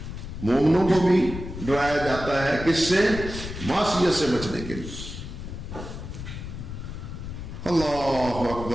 مومنوں کو بھی ڈرایا جاتا ہے، کس سے؟ معصیت سے بچنے کے لیے۔ اللہ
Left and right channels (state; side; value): noise; left; rumble, 9 dB below the sound